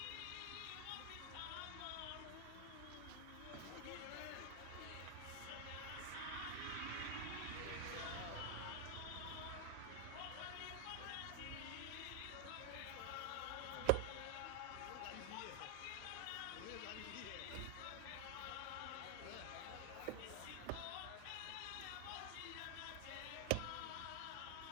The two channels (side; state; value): both; different; correlation 0.00